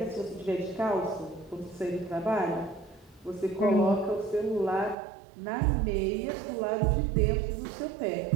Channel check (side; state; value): left; drops out; at 5.0 s